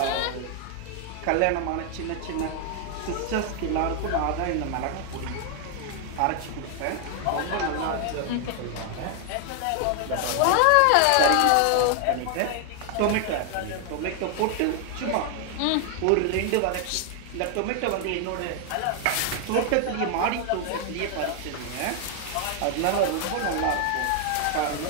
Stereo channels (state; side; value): different; both; correlation 0.00